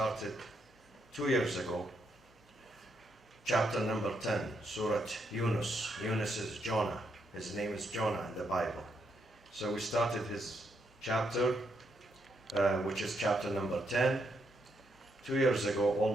2 years ago. Chapter number 10, Surat Younis. Younis is Jonah. His name is Jonah in the Bible. So we started his chapter, which is chapter number 10, 2 years ago,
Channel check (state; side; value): normal; both; correlation 0.78